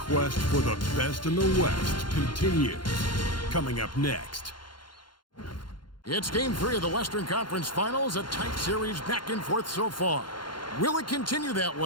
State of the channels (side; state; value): right; late; 0.71 ms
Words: for the best in the West continues. Coming up next. It's Game 3 of the Western Conference Finals, a tight series back and forth so far. Will it continue that